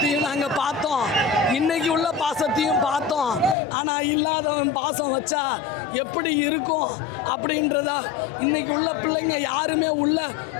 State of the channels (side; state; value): right; drops out; at 3.6 s